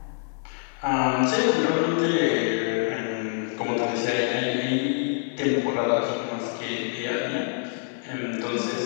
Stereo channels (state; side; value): silent; right; 58 dB below the other